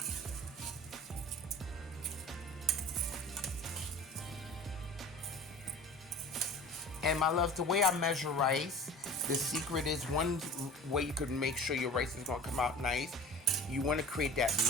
And my loves, the way I measure rice, the secret is one way you could make sure your rice is gonna come out nice. You wanna create that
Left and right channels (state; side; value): normal; both; correlation 0.39